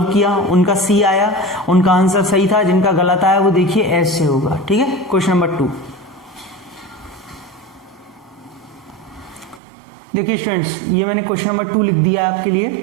किया उनका C आया, उनका आंसर सही था। जिनका गलत आया वो देखिए S से होगा। ठीक है, क्वेश्चन नंबर 2। देखिए स्टूडेंट्स, ये मैंने क्वेश्चन नंबर 2 लिख दिया है आपके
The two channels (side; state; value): left; drops out; at 9.6 s